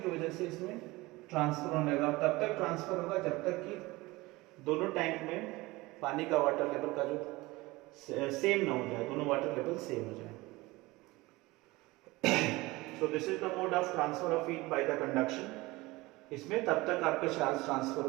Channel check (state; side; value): quieter; left; 21.2 dB